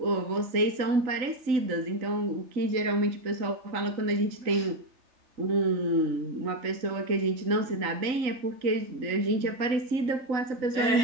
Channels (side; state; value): left; late; 3.9 ms